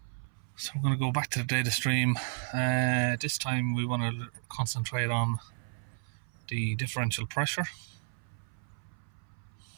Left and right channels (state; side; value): silent; left; 56 dB below the other